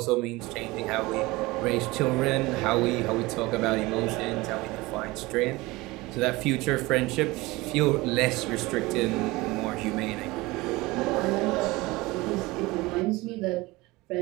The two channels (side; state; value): left; quieter; 21.5 dB